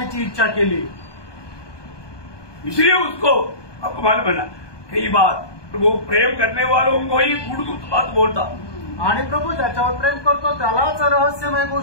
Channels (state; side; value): late; right; 1.2 ms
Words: इच्छा केली. इसलिए उसको आपको मालूम बना कई बार प्रभु प्रेम करने वालों को ही गुड़ बात बोलता. आणि प्रभू ज्याच्यावर प्रेम करतो त्यालाच रहस्यमय